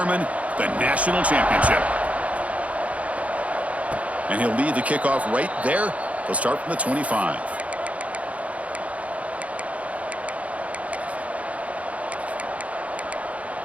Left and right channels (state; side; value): late; left; 0.066 ms